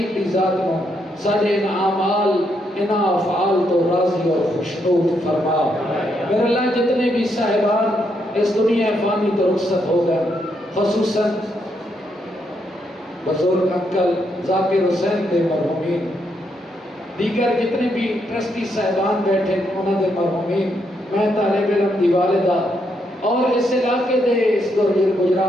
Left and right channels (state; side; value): normal; both; correlation 0.78